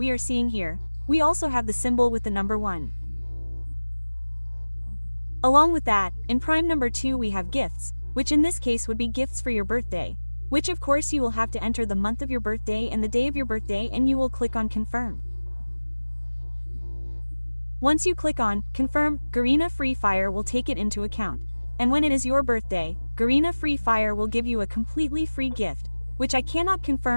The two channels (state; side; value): inverted; both; correlation -1.00